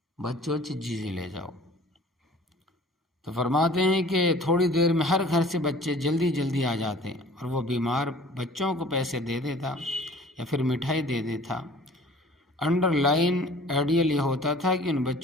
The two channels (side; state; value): both; normal; correlation 0.48